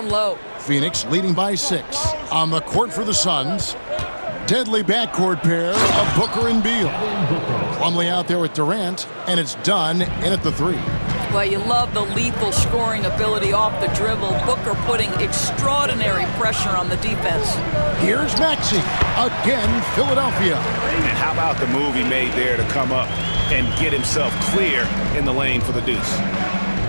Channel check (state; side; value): inverted; both; correlation -1.00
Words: low. Phoenix leading by 6. On the court for the Suns, deadly backcourt pair of Booker and Beal. Plumlee out there with Durant, and it's done in at the 3. Well, you love the lethal scoring ability off the dribble. Booker putting extraordinary pressure on the defense. Here's Maxey. Again, Philadelphia. And how about the move he made there to come up and get himself clear in the lane for the deuce?